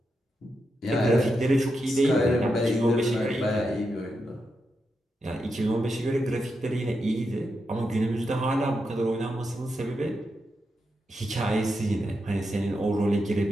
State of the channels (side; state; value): both; normal; correlation 0.86